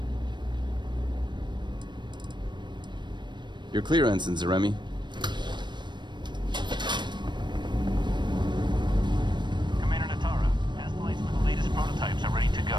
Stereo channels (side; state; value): left; late; 0.22 ms